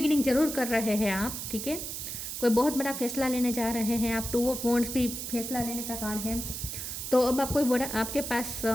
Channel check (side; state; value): right; noise; hiss, 6 dB below the sound